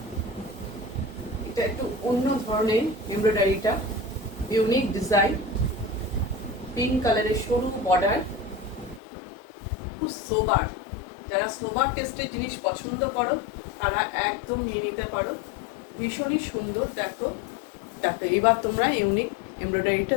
এটা একটু অন্য ধরনের এমব্রয়ডারিটা, ইউনিক ডিজাইন, পিঙ্ক কালারের সরু বর্ডার, খুব সোবার। যারা সোবার টেস্টের জিনিস পছন্দ করো তারা একদম নিয়ে নিতে পারো, ভীষণই সুন্দর। দেখো দেখো এবার তোমরা ইউনিক এমব্রয়ডারিটা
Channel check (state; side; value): drops out; right; at 9.0 s